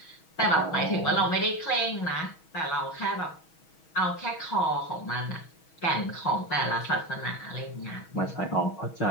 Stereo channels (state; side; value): late; right; 6.3 ms